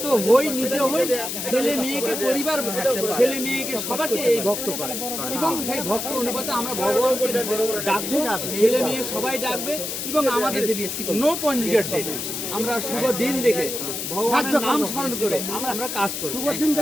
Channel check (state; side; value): noise; left; hiss, 4 dB below the sound